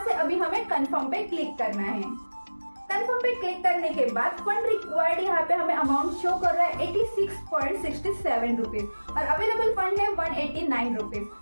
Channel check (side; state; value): both; inverted; correlation -1.00